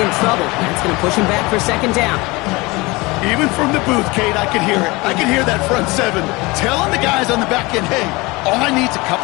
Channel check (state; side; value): quieter; right; 23.6 dB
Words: in trouble. That's going to push him back for 2nd down. Even from the booth, Kate, I can hear it. I can hear that front 7 telling the guys on the back end, hey, all I need is a